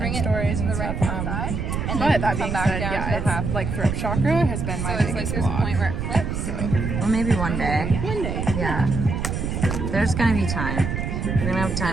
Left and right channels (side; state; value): right; noise; rumble, 2 dB below the sound